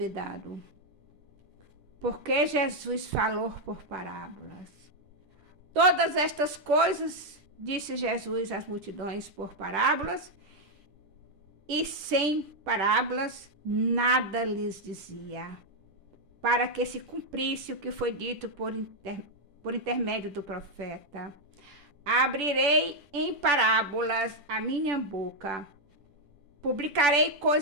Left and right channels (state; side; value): late; left; 10 ms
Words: Porque Jesus falou por parábolas. Todas estas coisas disse Jesus às multidões por parábolas, e sem parábolas nada lhes dizia, para que se cumprisse o que foi dito por intermédio do profeta: abrirei em parábolas a minha boca, publicarei